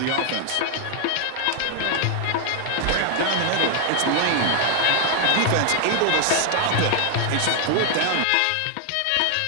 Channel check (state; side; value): different; both; correlation 0.00